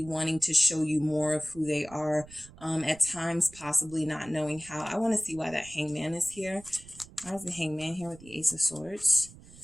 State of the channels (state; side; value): noise; right; rumble, 20 dB below the sound